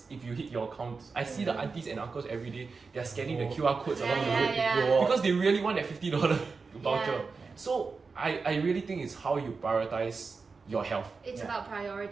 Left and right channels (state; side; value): quieter; left; 4.6 dB